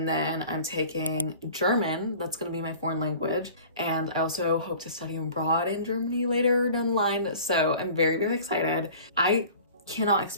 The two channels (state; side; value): inverted; both; correlation -0.44